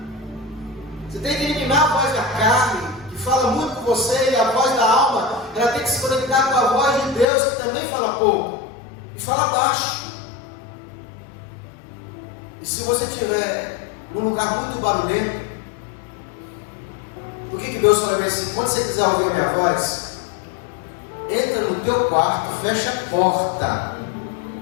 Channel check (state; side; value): drops out; right; at 7.2 s